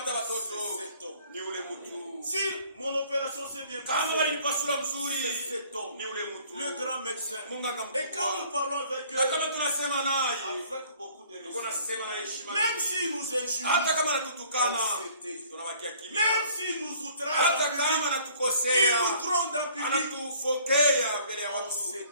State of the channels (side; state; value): both; inverted; correlation -0.56